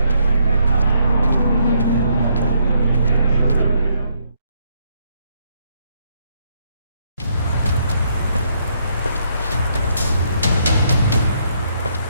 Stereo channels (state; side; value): inverted; both; correlation -0.72